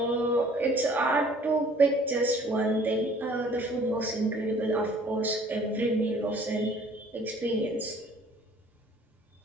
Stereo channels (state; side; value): normal; both; correlation 0.54